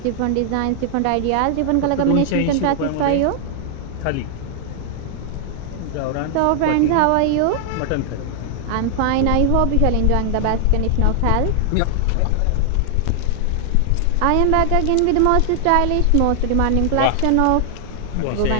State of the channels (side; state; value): both; different; correlation 0.00